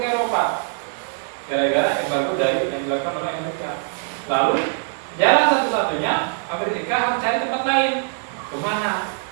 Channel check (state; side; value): silent; left; 61 dB below the other